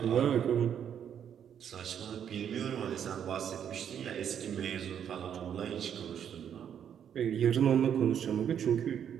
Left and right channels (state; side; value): quieter; left; 8.8 dB